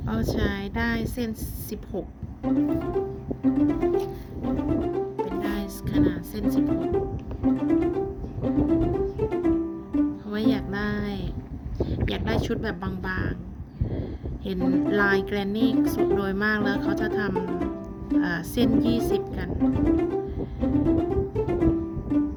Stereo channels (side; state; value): both; identical; correlation 1.00